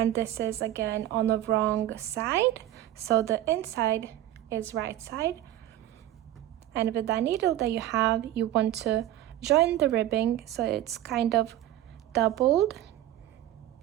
this is again on the wrong side, so the inside is right side. And with that needle that you have, you want to join the ribbing so it's kind of doubled,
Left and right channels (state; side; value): quieter; left; 13.4 dB